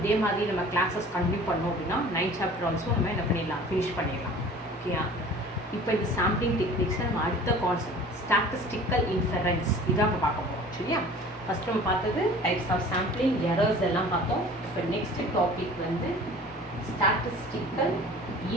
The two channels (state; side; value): normal; both; correlation 0.45